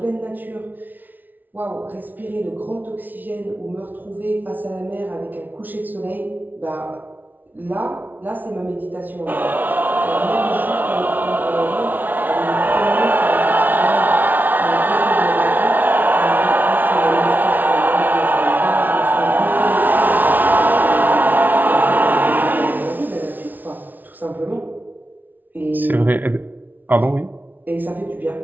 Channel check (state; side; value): late; left; 0.084 ms